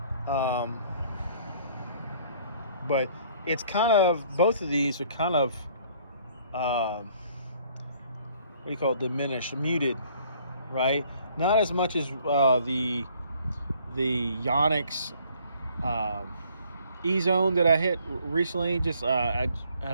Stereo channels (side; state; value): both; inverted; correlation -0.60